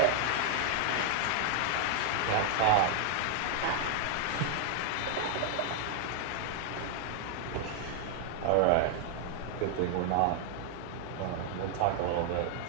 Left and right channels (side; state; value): both; different; correlation 0.00